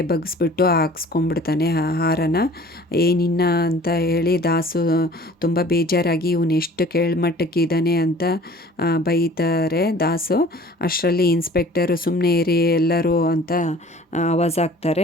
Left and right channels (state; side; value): normal; both; correlation 0.48